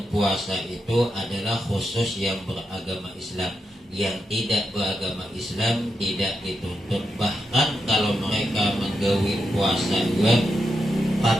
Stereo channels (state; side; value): normal; both; correlation 0.85